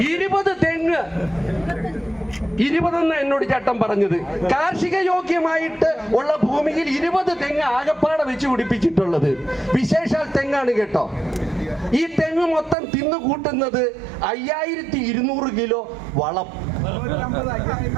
20 തെങ്ങ്. 20 എന്നോട് ചേട്ടൻ പറഞ്ഞത്. കാർഷിക യോഗ്യമായിട്ട് ഉള്ള ഭൂമിയിൽ 20 തെങ്ങ് ആകപ്പാടെ വെച്ച് പിടിപ്പിച്ചിട്ടുള്ളത്. വിശേഷാൽ തെങ്ങാണ് കേട്ടോ. ഈ തെങ്ങ് മൊത്തം തിന്നു കൂട്ടുന്നത് 5200 കിലോ വളം.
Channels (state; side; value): drops out; left; at 12.8 s